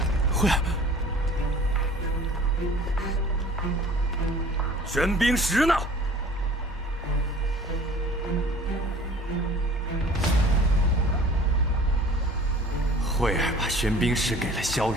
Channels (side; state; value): both; normal; correlation 0.48